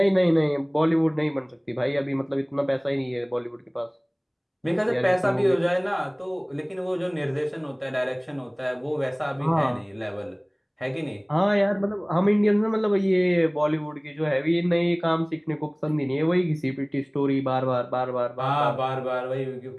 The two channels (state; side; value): identical; both; correlation 1.00